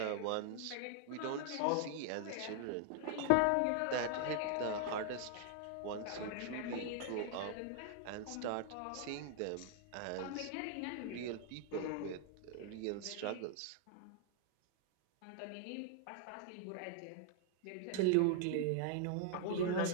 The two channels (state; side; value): different; both; correlation 0.00